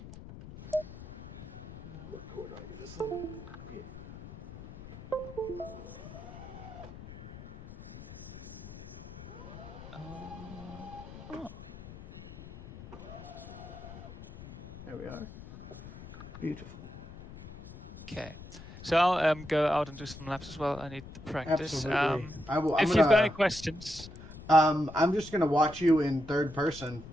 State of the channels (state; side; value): noise; left; rumble, 14 dB below the sound